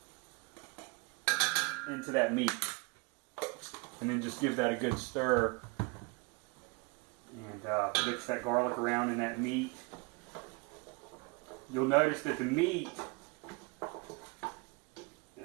into that meat. And then just give that a good stir. And mix that garlic around in that meat. You'll notice that the meat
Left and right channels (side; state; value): left; quieter; 29.2 dB